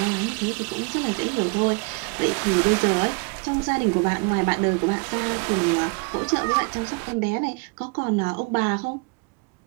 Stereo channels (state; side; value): quieter; left; 31.4 dB